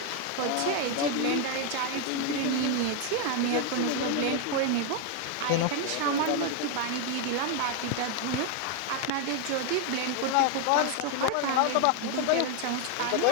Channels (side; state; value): both; different; correlation 0.01